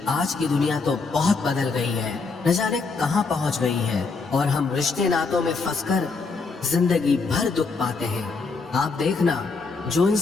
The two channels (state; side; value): quieter; right; 4.3 dB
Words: आज की दुनिया तो बहुत बदल गई है, न जाने कहाँ पहुँच गई है। और हम रिश्ते नातों में फंसकर जिंदगी भर दुख पाते हैं। आप देखना, जो